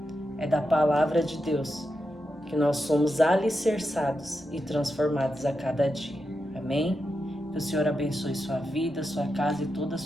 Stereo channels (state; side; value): normal; both; correlation 0.87